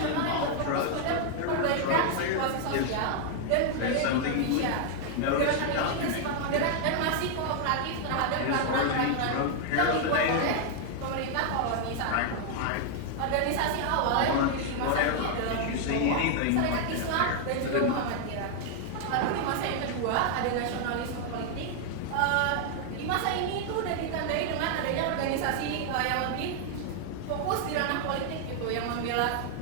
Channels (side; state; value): both; different; correlation 0.00